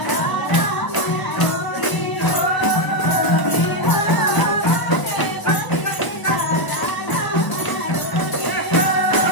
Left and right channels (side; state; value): right; late; 1.0 ms